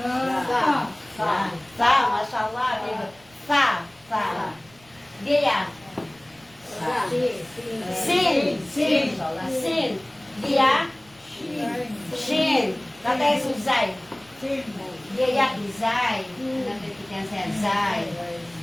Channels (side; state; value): right; noise; rumble, 28 dB below the sound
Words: Sa, mashallah. Sa. Dia. Sin. Dia. Shin. Katay suzay. Dia izay. Nagtitikan siya zay.